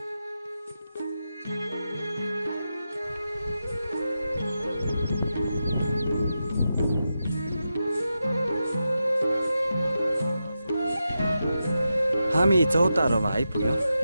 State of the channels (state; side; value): inverted; both; correlation -0.89